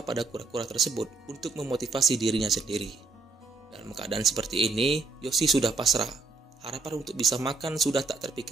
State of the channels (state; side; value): quieter; left; 3.8 dB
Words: pada kura-kura tersebut untuk memotivasi dirinya sendiri. Dalam keadaan seperti ini, Yoshi sudah pasrah. Harapan untuk bisa makan sudah tak